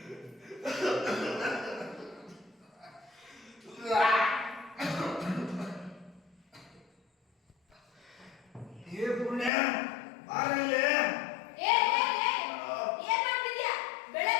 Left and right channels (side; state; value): right; drops out; at 9.5 s